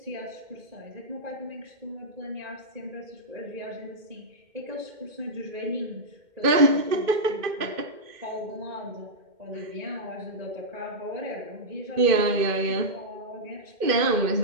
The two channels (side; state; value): left; late; 2.5 ms